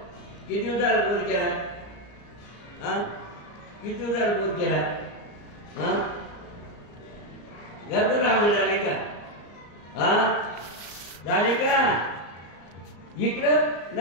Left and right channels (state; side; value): late; right; 34 ms